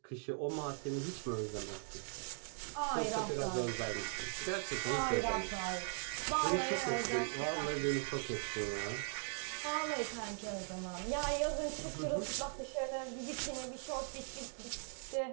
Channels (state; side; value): silent; left; 51 dB below the other